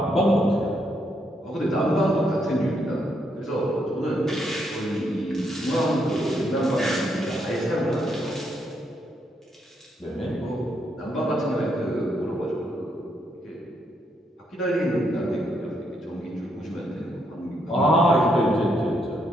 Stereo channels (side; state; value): both; normal; correlation 0.76